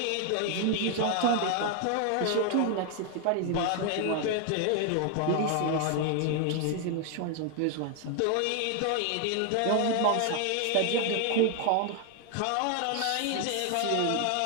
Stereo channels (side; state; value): both; different; correlation 0.00